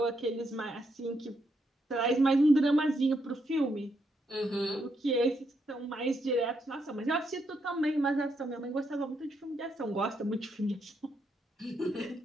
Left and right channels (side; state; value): both; normal; correlation 0.78